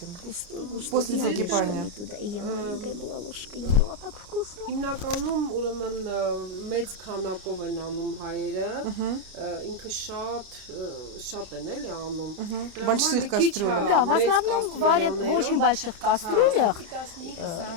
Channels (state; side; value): late; left; 29 ms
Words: Густой, после я закипания? ложками туда, и я маленькая была ложкой, ела так вкусно. Հիմնականում ուրեմն մեծ քանակով են անում հայերը, ինքը շատ են էլի անում։ Դրա Больших համար մի քիչ, кастрюлях. հա, Да, в մեծ основном варят в очень больших кастрюлях.